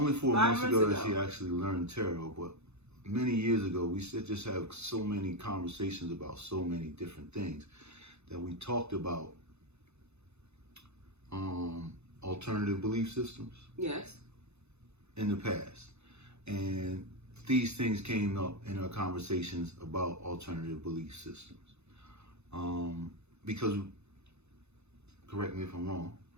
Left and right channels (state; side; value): late; left; 0.81 ms